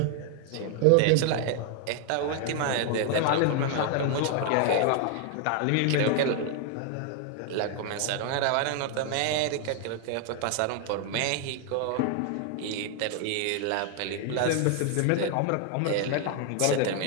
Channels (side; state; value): both; different; correlation 0.00